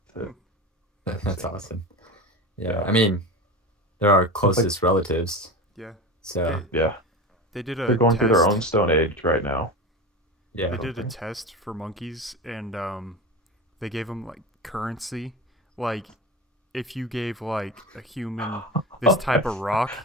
Hmm. To, That's awesome. Yeah. yeah, I mean, they're our it's like closest relatives. Yeah. So They yeah, they did they're a going through their own test. stone age right now. I yeah. They don't did a think. test for monkeys, and they gave them like currency. Like if you gave like a human this type of rock,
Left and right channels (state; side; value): normal; both; correlation 0.26